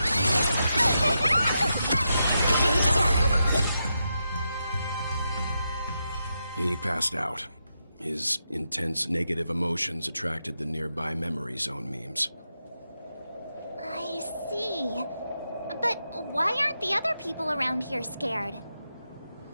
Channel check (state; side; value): inverted; both; correlation -0.85